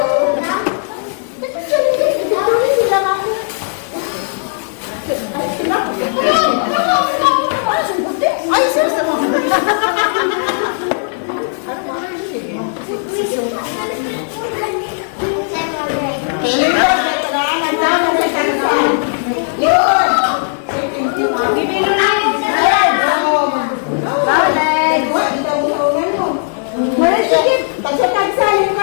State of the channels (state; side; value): silent; right; 66 dB below the other